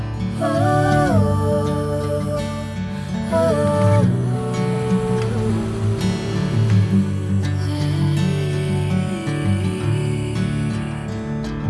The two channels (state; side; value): identical; both; correlation 1.00